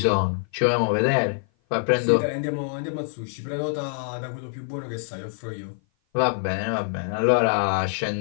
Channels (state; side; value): silent; right; 56 dB below the other